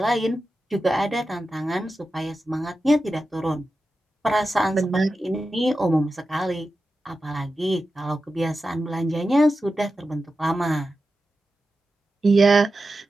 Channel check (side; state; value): both; normal; correlation 0.92